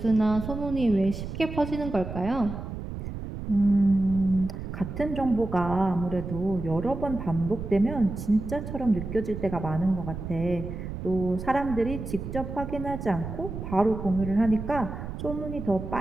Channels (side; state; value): right; noise; rumble, 7 dB below the sound